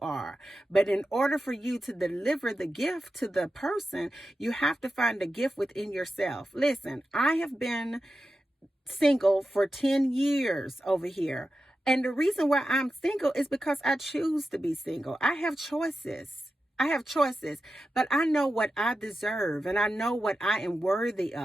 But in order for you to deliver the gift to the person, you have to find the gift within yourself. Listen, I have been single for 10 years over here. And the reason why I'm single is because I choose to be single. I have choices, but I know what I deserve, and I know what I am worthy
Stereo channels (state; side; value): normal; both; correlation 0.91